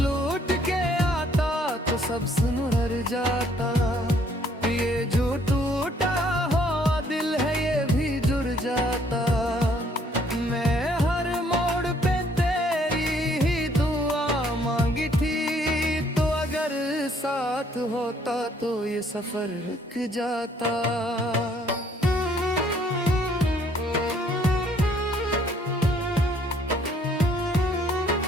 के आता तो सब सुनहर जाता। ये जो टूटा हुआ दिल है ये भी जुड़ जाता। मैं हर मोड़ पे तेरी ही दुआ मांगी थी, तो अगर साथ होता तो ये सफर रुक जाता।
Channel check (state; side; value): normal; both; correlation 0.64